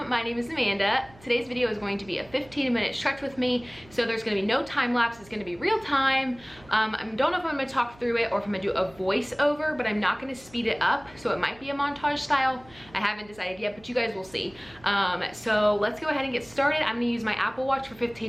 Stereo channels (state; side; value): noise; right; hum, 24 dB below the sound